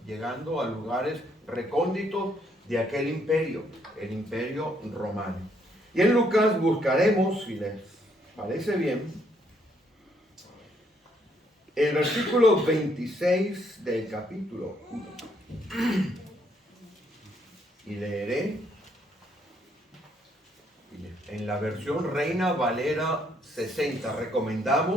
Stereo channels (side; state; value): both; normal; correlation 0.71